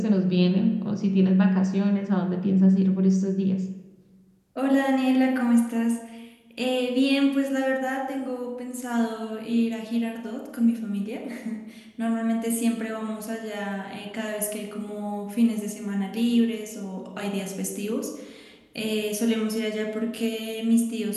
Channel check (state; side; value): identical; both; correlation 1.00